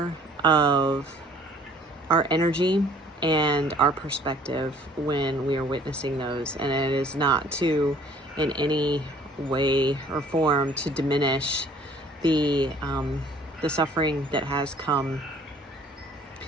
of our energy and our perspective when we are witnessing those. And it is not to, in any way or form, to diminish the suffering that has come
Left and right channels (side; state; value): both; normal; correlation 0.55